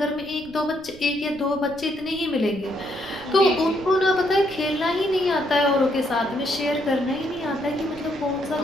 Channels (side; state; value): right; noise; rumble, 21 dB below the sound